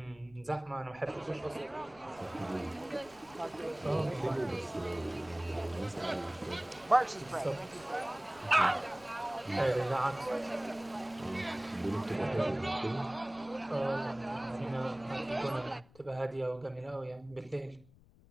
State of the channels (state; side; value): noise; left; rumble, 25 dB below the sound